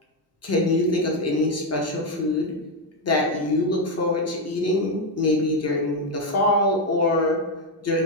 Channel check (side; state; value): both; normal; correlation 0.05